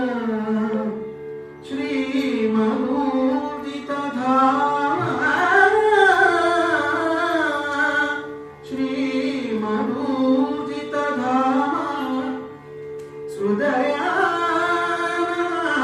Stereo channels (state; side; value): identical; both; correlation 1.00